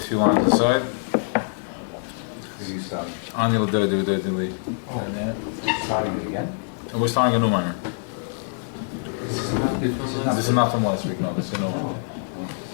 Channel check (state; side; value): silent; right; digital silence